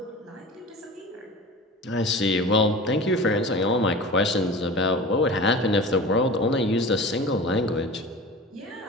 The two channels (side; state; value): both; normal; correlation 0.35